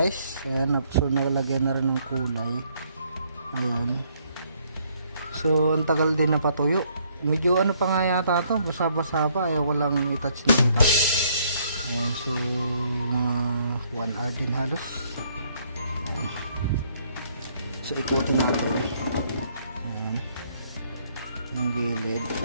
Ayan, so nalagyan na rin ng kulay. Ayan. So ang tagal din na patuyo. Medyo ano pa nga yata to, basa-basa pa. Ayaw ko lang i-touch na i-touch. Ayan, so mga 1 hour din halos. Ayan. So ikutin natin. Ayan. Ang gilid.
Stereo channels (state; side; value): inverted; both; correlation -0.67